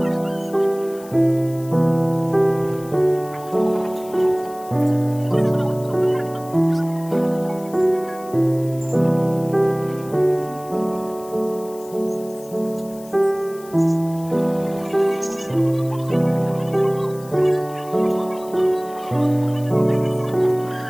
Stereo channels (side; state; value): left; noise; hiss, 21 dB below the sound